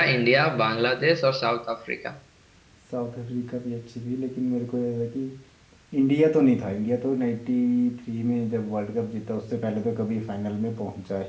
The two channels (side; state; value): both; identical; correlation 1.00